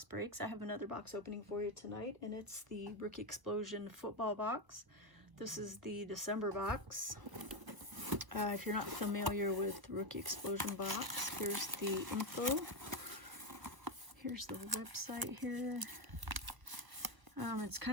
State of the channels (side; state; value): left; late; 1.0 ms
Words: Breaks. I have another box opening for you tonight, and it's the Rookie Explosion football box. This is the December box. If you're not familiar with Rookie Explosion box, here's the info. Here's the website here. It's